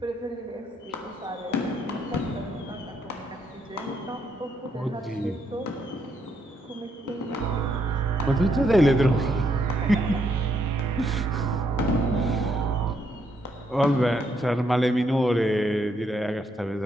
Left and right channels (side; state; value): both; normal; correlation 0.75